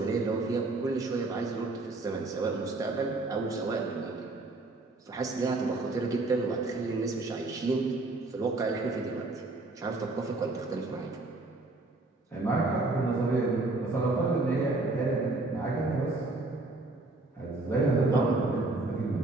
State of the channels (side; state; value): left; quieter; 3.1 dB